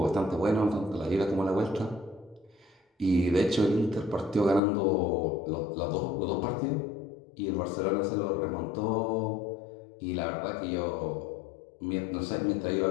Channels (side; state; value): right; drops out; at 4.6 s